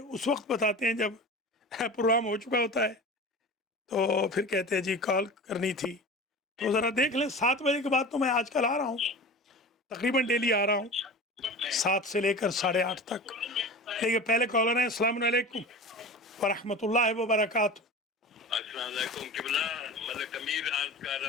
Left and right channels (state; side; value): normal; both; correlation 0.34